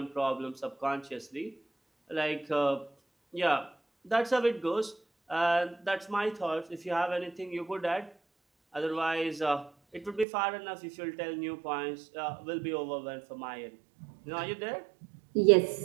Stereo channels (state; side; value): drops out; left; at 10.2 s